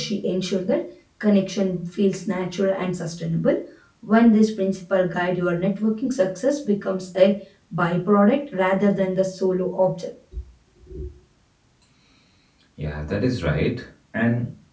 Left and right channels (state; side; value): identical; both; correlation 1.00